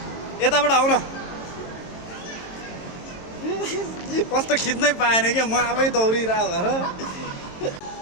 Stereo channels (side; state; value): right; late; 22 ms